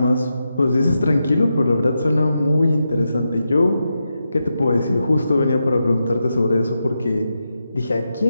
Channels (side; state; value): both; inverted; correlation -0.87